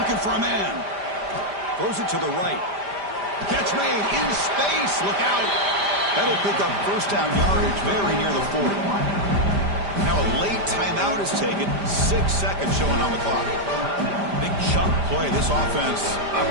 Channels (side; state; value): left; late; 5.0 ms